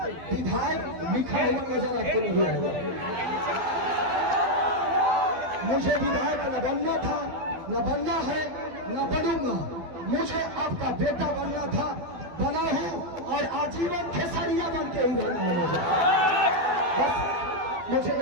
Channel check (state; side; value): late; left; 12 ms